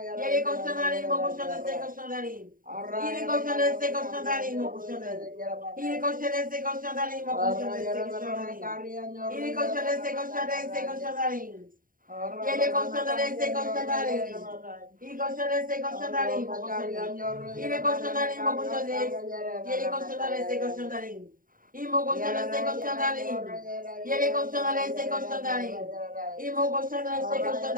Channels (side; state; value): left; late; 0.41 ms